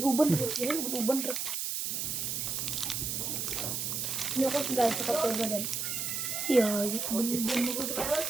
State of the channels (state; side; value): noise; right; hiss, 2 dB below the sound